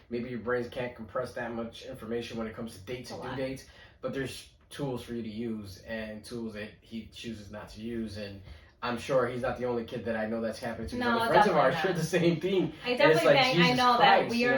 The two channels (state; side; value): identical; both; correlation 1.00